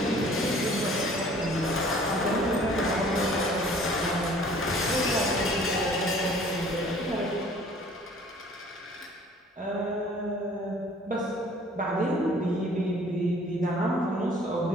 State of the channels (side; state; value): both; normal; correlation 0.53